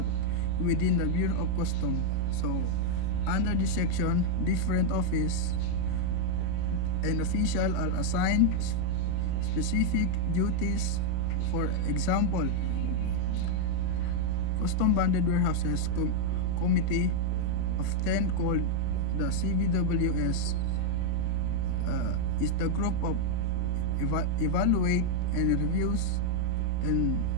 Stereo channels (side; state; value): both; different; correlation 0.00